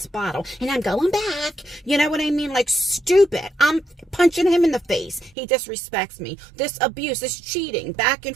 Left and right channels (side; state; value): left; drops out; at 5.4 s